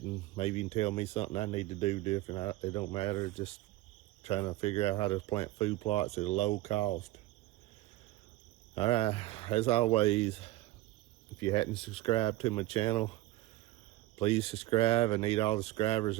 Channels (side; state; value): left; quieter; 17.4 dB